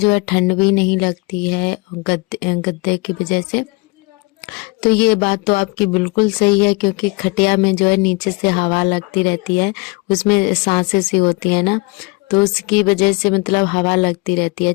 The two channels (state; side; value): quieter; right; 26.3 dB